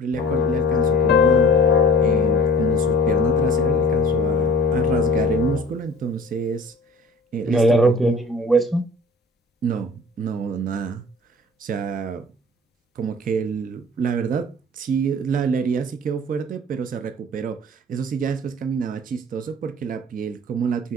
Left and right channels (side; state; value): both; normal; correlation 0.44